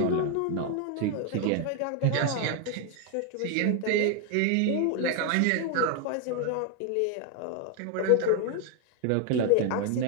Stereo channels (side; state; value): both; different; correlation 0.01